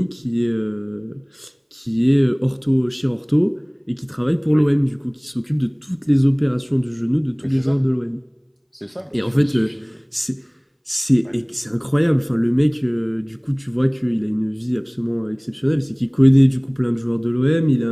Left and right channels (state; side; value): identical; both; correlation 1.00